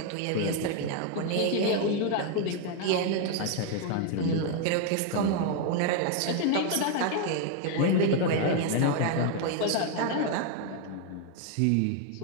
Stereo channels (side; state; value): both; different; correlation 0.01